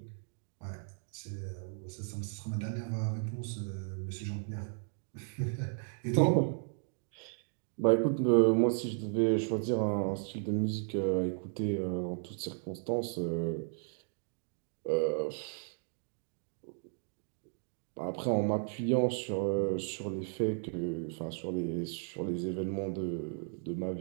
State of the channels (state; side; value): silent; left; 55 dB below the other